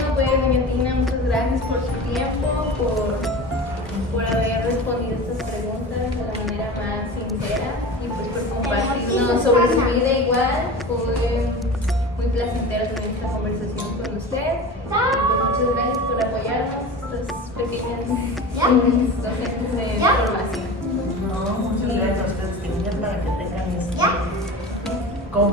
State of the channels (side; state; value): both; normal; correlation 0.32